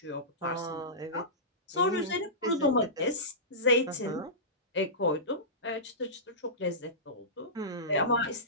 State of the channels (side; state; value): both; normal; correlation -0.20